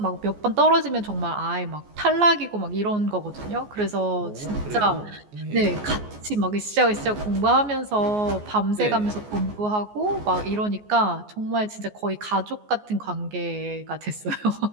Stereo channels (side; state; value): left; late; 14 ms